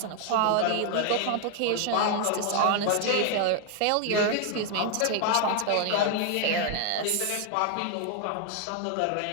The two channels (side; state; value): both; different; correlation 0.00